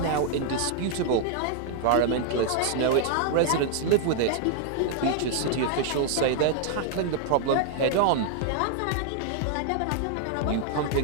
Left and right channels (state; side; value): different; both; correlation 0.00